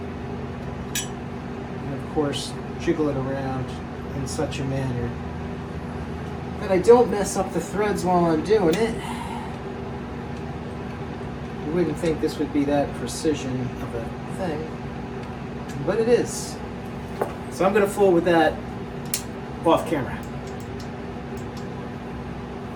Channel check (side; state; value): both; identical; correlation 1.00